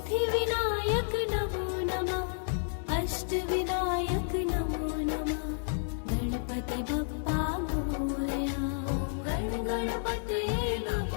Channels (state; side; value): silent; right; digital silence